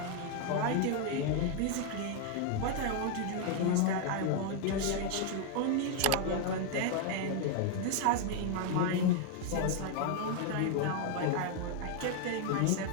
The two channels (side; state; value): both; different; correlation 0.00